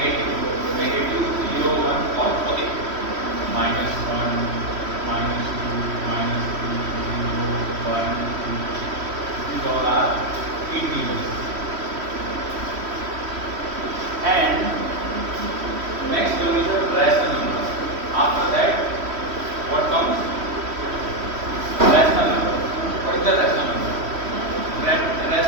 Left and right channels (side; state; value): left; late; 3.1 ms